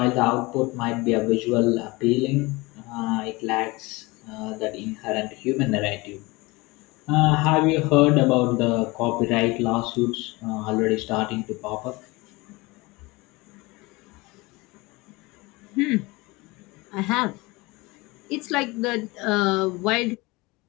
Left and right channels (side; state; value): right; quieter; 23.4 dB